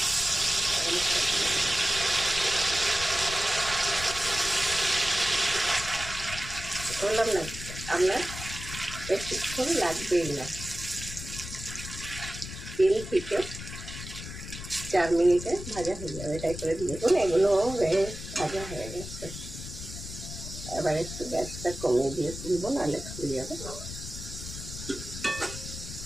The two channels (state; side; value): noise; left; rumble, 10 dB below the sound